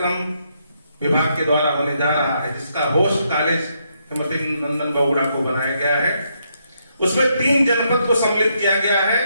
विभाग के द्वारा होने जा रहा है, जिसका होस्ट कॉलेज हेमंती नंदन बहुगुणा को बनाया गया है। उसमें 3 जनपद को सम्मिलित किया गया है।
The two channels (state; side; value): inverted; both; correlation -0.77